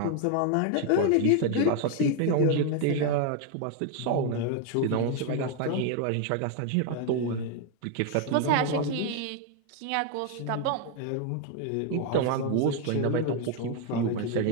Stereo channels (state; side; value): different; both; correlation 0.01